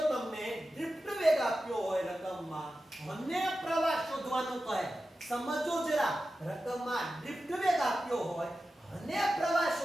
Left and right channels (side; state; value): both; normal; correlation 0.93